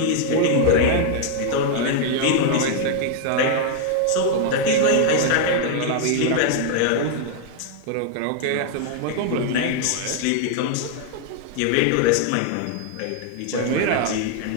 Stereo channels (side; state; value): both; different; correlation 0.00